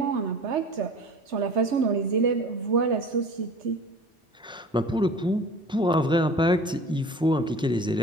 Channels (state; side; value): normal; both; correlation 0.41